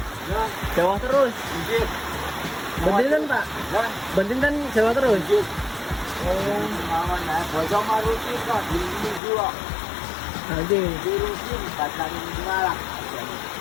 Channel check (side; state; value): right; drops out; at 9.2 s